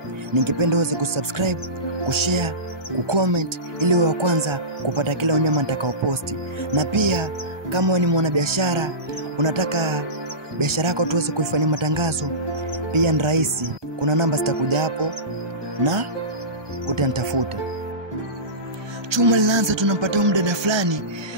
ningependa uweze kusubscribe, kushare, kucomment ili wa kwanza kupata kila unyama nitakaoposti. Na pia kama wewe ni mwanabiashara, unataka biashara yako tuweze kuifanyia matangazo, pia ni rahisi. Kuna namba zitakuja hapo na utanitafuta. Chuma linaanza, tunampata mdada fulani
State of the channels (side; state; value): left; late; 1.2 ms